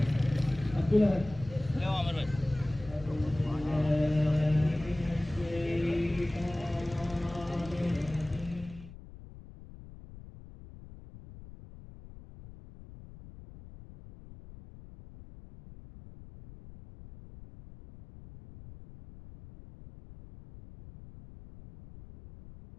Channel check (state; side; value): noise; left; rumble, 17 dB below the sound